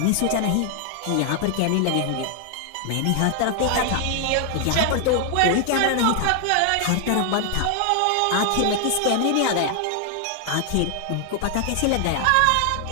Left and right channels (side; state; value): both; different; correlation 0.00